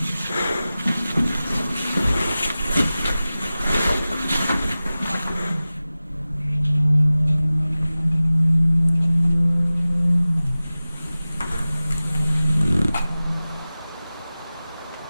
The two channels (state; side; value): inverted; both; correlation -0.96